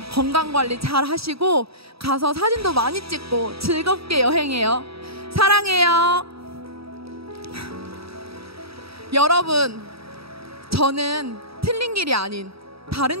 건강관리 잘 하시고 가서 사진도 많이 찍고 즐겁게 여행해요. 사랑해요. 여러분, 저는 틀린 길이 아닌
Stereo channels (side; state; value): left; late; 0.77 ms